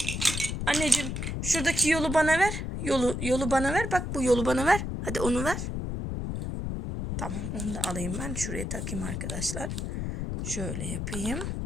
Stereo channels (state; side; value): noise; left; rumble, 3 dB below the sound